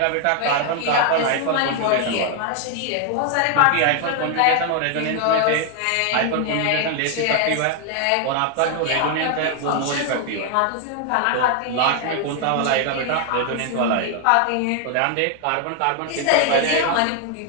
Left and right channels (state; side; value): different; both; correlation 0.00